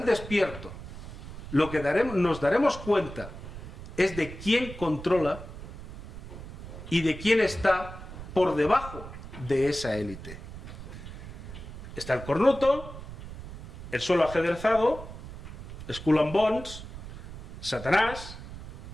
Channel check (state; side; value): noise; right; rumble, 12 dB below the sound